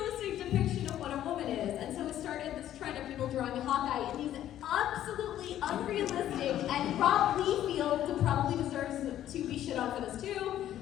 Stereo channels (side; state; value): right; quieter; 11.9 dB